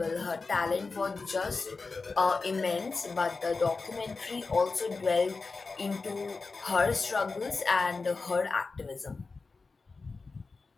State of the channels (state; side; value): quieter; right; 4.1 dB